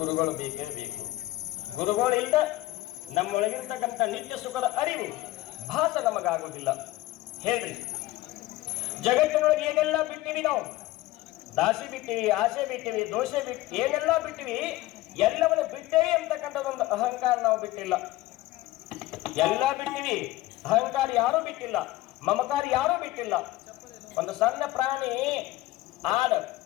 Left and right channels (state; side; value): quieter; right; 17.5 dB